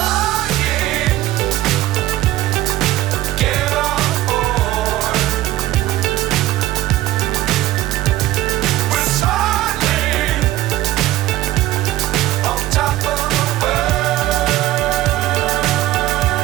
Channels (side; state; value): left; quieter; 15.4 dB